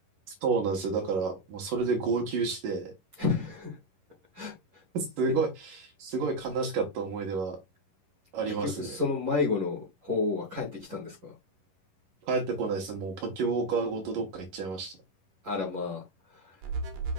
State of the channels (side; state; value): left; late; 11 ms